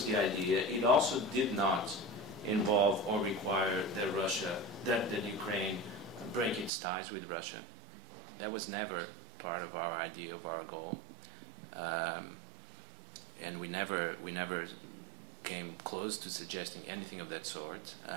the idea. It also did not involve or require that Ukraine break its ties with Russia. That was never part of our idea of our goal, and we never came close to suggesting anything of that sort.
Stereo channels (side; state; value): left; drops out; at 6.7 s